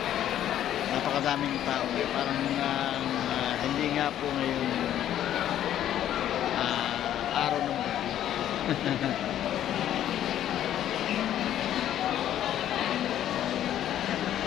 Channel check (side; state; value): right; quieter; 11.4 dB